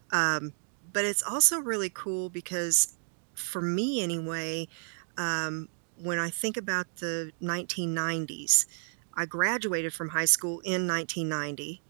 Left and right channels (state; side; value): silent; left; 57 dB below the other